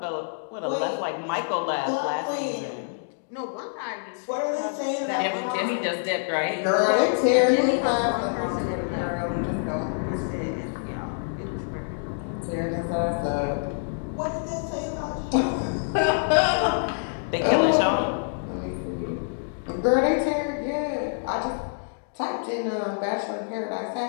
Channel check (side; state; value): right; silent; digital silence